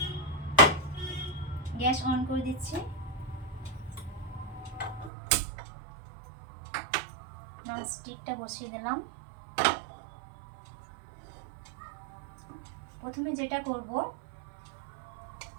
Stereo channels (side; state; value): left; drops out; at 5.1 s